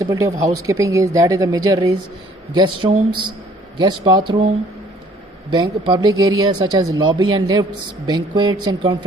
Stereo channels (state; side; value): normal; both; correlation 0.58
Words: of housekeeping is the major is guest rooms, guest bathroom, Public areas such as lobby and lifts, banquets and